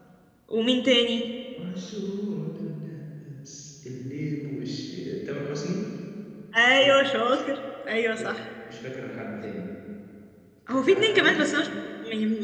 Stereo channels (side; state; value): both; identical; correlation 1.00